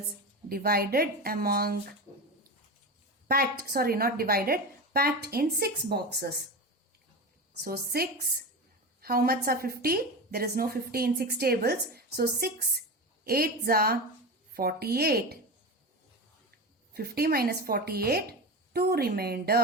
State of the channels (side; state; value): both; normal; correlation 0.23